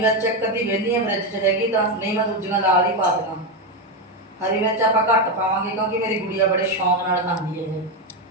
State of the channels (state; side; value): normal; both; correlation 0.09